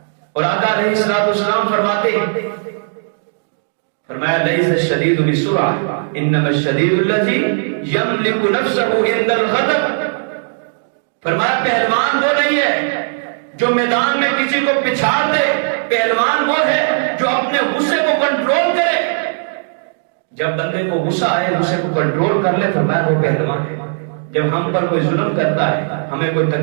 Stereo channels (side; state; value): left; silent; digital silence